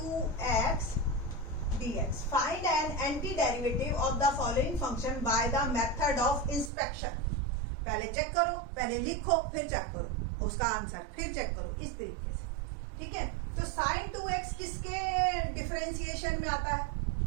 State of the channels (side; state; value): left; drops out; at 6.7 s